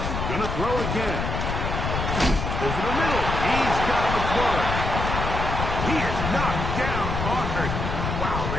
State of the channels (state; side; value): noise; left; rumble, 3 dB below the sound